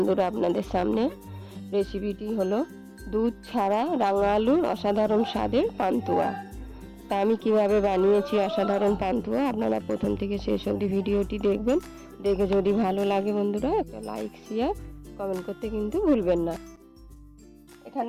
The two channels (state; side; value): identical; both; correlation 1.00